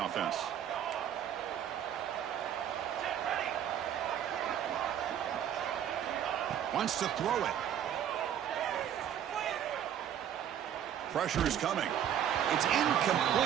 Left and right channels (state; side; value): quieter; left; 9.9 dB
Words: offense. Wants to throw it. Pressure is coming. It's